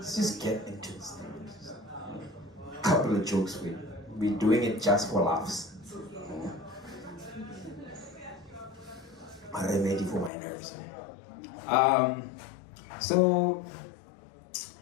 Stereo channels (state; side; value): drops out; right; at 10.3 s